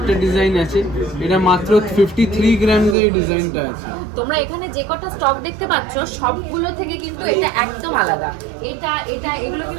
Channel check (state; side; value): drops out; left; at 3.0 s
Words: ডিজাইন আছে, এটা মাত্র 53 গ্রাম এই ডিজাইনটা আছে। তোমরা এখানে যে কটা স্টক দেখতে পাচ্ছ সবগুলো থেকে কিন্তু এটা একদম আলাদা। এটা এটা এগুলো